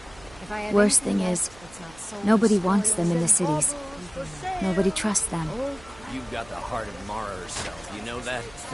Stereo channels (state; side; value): noise; right; hum, 22 dB below the sound